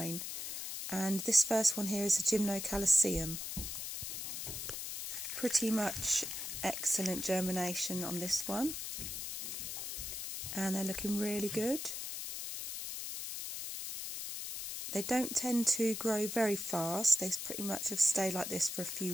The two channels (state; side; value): noise; left; hiss, 5 dB below the sound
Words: And this first one here is a germination. Pretty much excellent germination on this one, and they're looking really good. They don't tend to grow very fast. They pretty much have stayed like this for a few